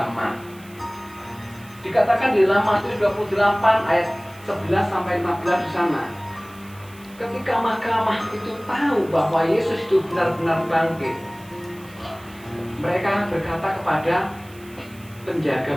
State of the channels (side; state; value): right; noise; hiss, 24 dB below the sound